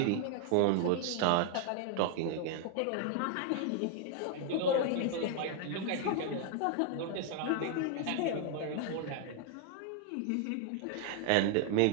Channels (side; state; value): both; different; correlation 0.00